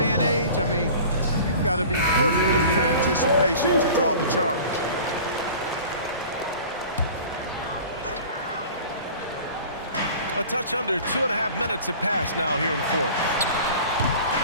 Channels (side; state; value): both; inverted; correlation -0.41